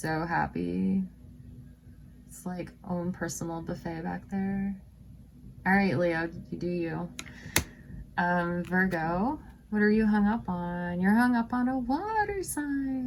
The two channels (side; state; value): both; identical; correlation 1.00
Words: happy. It's like own personal buffet back there. All right, Leo, you do you. Virgo, what are you hung up on? You're hung up on a water